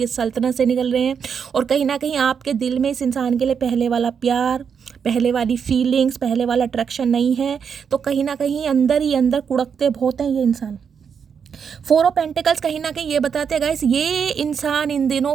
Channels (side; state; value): left; quieter; 6.9 dB